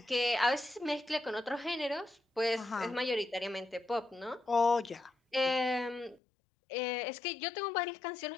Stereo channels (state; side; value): drops out; right; at 6.2 s